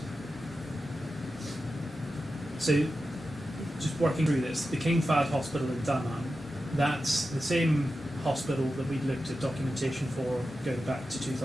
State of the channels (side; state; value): both; normal; correlation 0.91